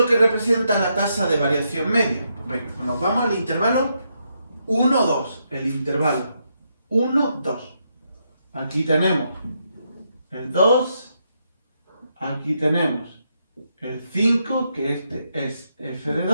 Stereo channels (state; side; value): inverted; both; correlation -0.80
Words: que representa la tasa de variación media? Pues venga, nos vamos al intervalo 1, 2. El intervalo 1, 2. Aquí tenemos el 2. Aquí tenemos el 5, que este es f de